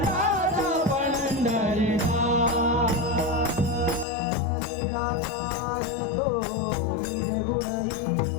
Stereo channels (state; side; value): drops out; right; at 4.0 s